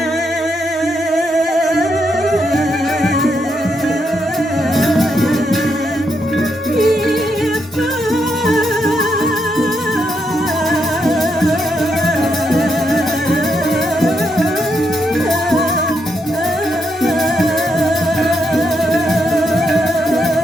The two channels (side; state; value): both; normal; correlation 0.80